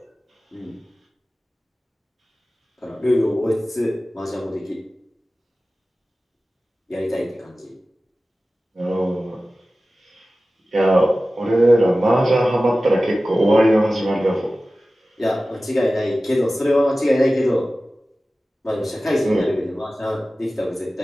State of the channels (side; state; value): both; normal; correlation 0.96